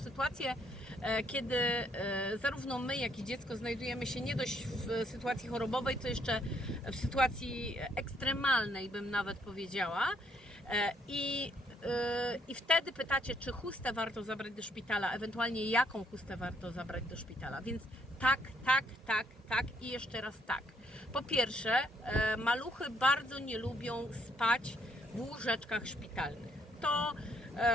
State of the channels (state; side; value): normal; both; correlation 0.69